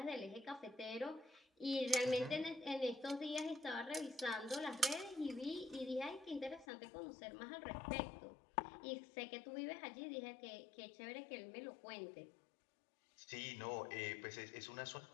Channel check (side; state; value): right; drops out; at 6.7 s